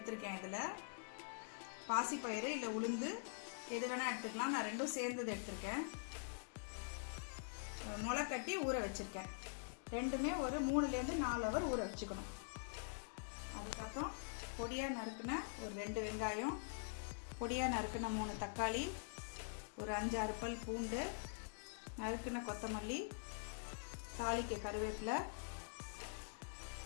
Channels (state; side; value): silent; right; digital silence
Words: இதில் பாசிப்பயிறு இல்லை உளுந்து எது வேணால் எடுத்துக்கலாம். நான் ரெண்டும் சேர்ந்தது எடுத்திருக்கேன். முளைக்கட்டி ஊற வச்சிருக்கேன். ரெண்டுமே ஒரு 3-4 ஹவர் ஊற வச்சுக்கணும். அதுக்கப்புறம் பொடியாக நறுக்கின ஒரு 2 வெங்காயம், பொடியாக நறுக்கின 3 தக்காளி, ஒரு 5-6 பல் பூண்டு, நறுக்கின கொத்தமல்லி, தாளிக்க கருவேப்பிலை,